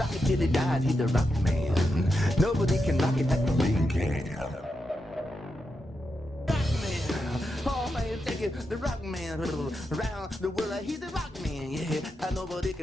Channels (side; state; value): both; normal; correlation 0.86